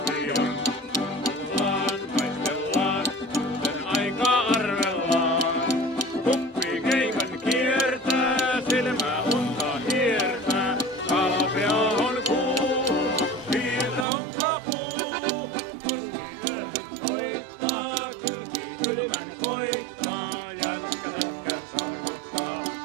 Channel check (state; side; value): drops out; left; at 14.1 s